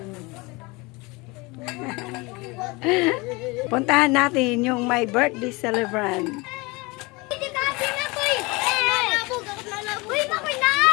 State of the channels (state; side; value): quieter; right; 25.3 dB